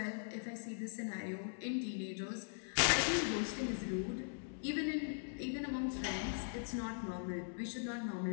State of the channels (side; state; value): right; silent; digital silence